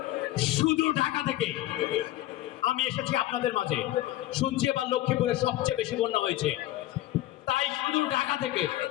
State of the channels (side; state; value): right; quieter; 15.4 dB